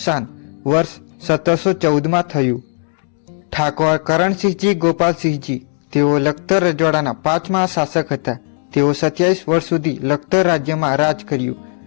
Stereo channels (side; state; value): right; silent; 56 dB below the other